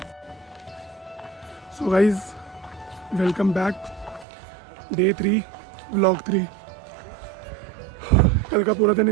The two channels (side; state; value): left; drops out; at 4.2 s